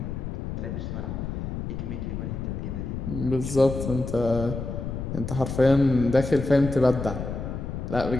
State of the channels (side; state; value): left; noise; rumble, 5 dB below the sound